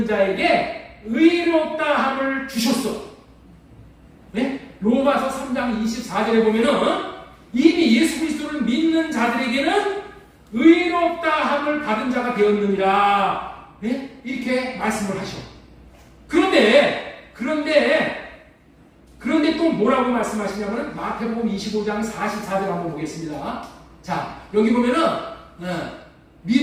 자에게 의롭다함을 주셨어. 네? 로마서 3장 24절에 보면은 이미 예수 그리스도를 믿는 자들에게는 의롭다함을 받은 자가 되었느니라. 네? 이렇게 말씀을 하셔. 그런데 또 뭐라고 말씀하시냐면 마태복음 25장 44절 한번 보겠습니다. 자, 여기 보면은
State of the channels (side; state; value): both; identical; correlation 1.00